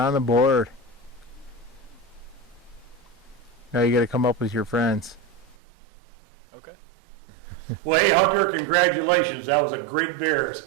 the board. Now you got to come up with your friends. okay. Well, hey, Hunter, congratulations. That was a great bear,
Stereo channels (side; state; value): left; drops out; at 5.6 s